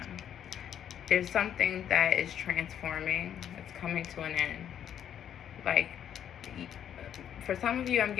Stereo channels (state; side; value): quieter; right; 9.5 dB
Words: There's something that is transforming. It's coming to an end. Like, for some of you, I'm